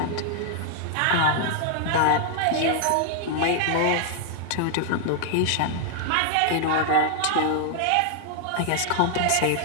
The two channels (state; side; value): different; both; correlation 0.00